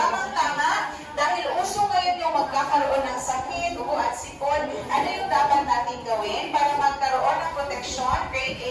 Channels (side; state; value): both; identical; correlation 1.00